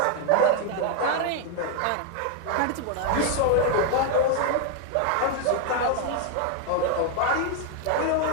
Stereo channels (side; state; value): both; different; correlation 0.00